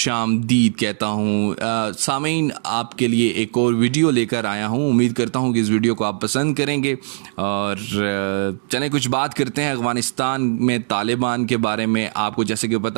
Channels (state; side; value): silent; left; digital silence